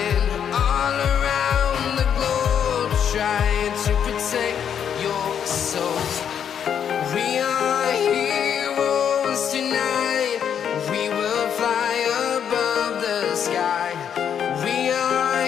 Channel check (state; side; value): quieter; right; 8.4 dB